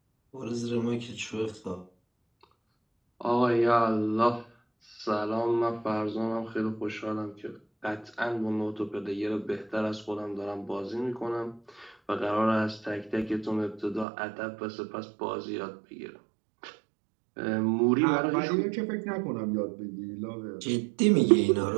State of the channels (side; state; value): left; drops out; at 14.1 s